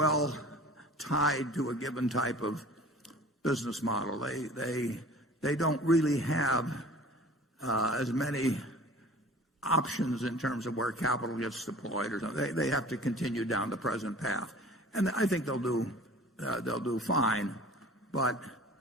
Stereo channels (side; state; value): both; normal; correlation 0.44